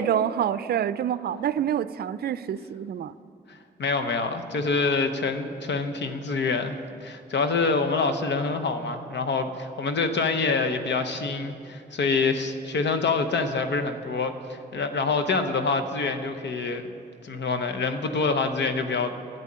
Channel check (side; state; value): both; normal; correlation 0.16